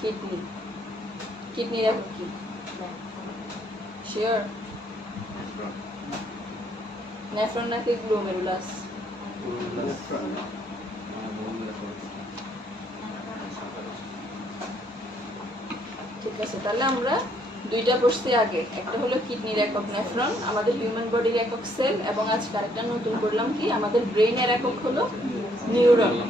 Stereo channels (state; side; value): normal; both; correlation 0.68